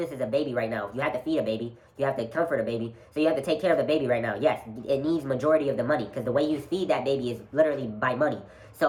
is a baby right now. You have to feed a baby. You have to comfort a baby. So you have to take care of the baby right now. Yes, it needs majority of the money because the way you feed that baby is literally by money.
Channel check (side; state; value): both; identical; correlation 1.00